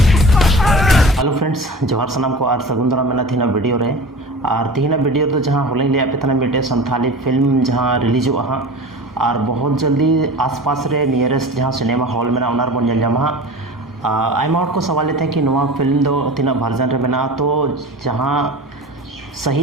हेलो फ्रेंड्स, जोहार सनाम को और सगुन दाराम मेना थीना वीडियो रे और तीना वीडियो तो जहाँ होलें लिया पे तना मिटे संथाली फिल्म जहाँ रिलीज हुआ हाँ और बहुत जल्दी आसपास रे नियरेस्ट जहाँ सिनेमा हॉल में उनार बन जल जामा आयमा हॉट को सवाल थे कि नवा फिल्म दो तीना वर्जन रे मेना तो जहाँ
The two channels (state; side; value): normal; both; correlation 0.35